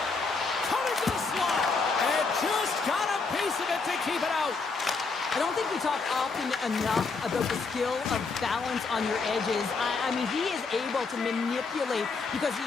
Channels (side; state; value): right; quieter; 4.4 dB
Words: Coming to the slot. And just got a piece of it to keep it out. I don't think we talk often enough about the skill of balance on your edges. I mean, he is able to manipulate because he